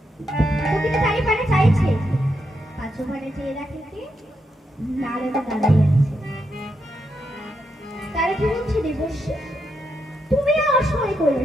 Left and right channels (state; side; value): normal; both; correlation 0.82